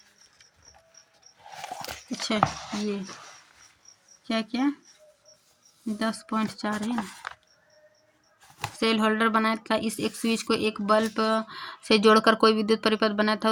अच्छा, ये क्या 10.4 है ना। सेल होल्डर बनाया था, इस एक स्विच को एक बल्ब से जोड़कर कोई विद्युत परिपथ बनाया था।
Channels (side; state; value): both; identical; correlation 1.00